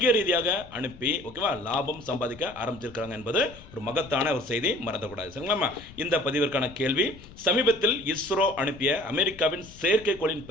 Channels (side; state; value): left; noise; rumble, 19 dB below the sound